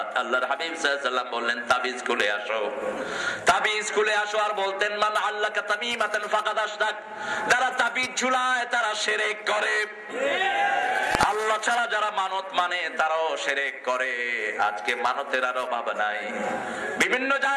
আল্লাহর হাবিব সাল্লাল্লাহু আলাইহি ওয়াসাল্লাম বললেন, তাবিজ খুলে আসো। তাবিজ খুলে আসো। আর বলতেন, মান আল্লাকা তামিমাতান ফাকাদ আশরাক, যারা তাবিজ ঝুলায় তারা শিরক করে। আল্লাহ ছাড়া যারা মানত মানে তারাও শিরক করে। আজকে মানতের আর অভাব নাই, বিভিন্ন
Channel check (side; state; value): both; identical; correlation 1.00